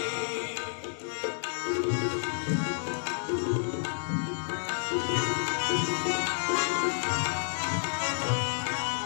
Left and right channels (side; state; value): right; silent; 58 dB below the other